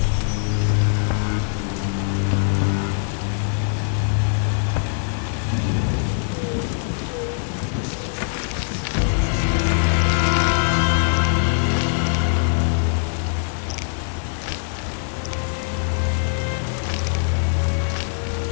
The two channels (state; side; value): silent; right; 63 dB below the other